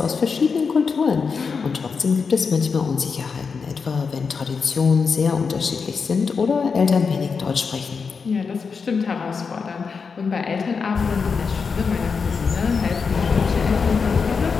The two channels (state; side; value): quieter; right; 5.4 dB